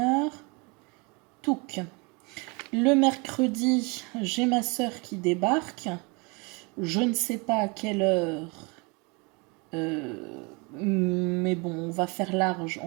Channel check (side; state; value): left; quieter; 29.7 dB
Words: Touc. Le mercredi, j'ai ma sœur qui débarque. Je ne sais pas à quelle heure. Mais bon, on va faire large.